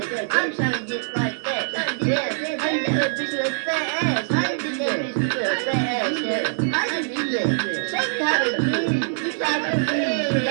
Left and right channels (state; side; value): silent; left; digital silence